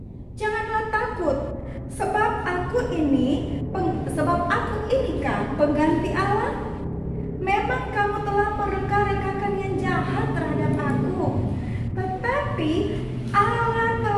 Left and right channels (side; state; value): both; identical; correlation 1.00